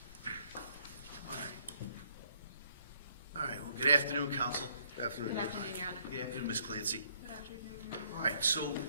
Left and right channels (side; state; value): both; inverted; correlation -0.66